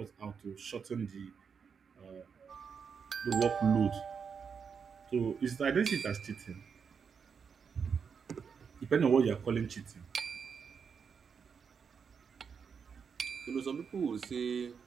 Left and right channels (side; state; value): left; quieter; 6.4 dB